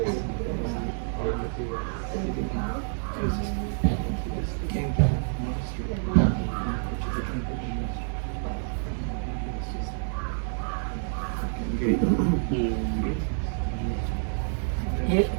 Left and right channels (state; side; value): silent; left; digital silence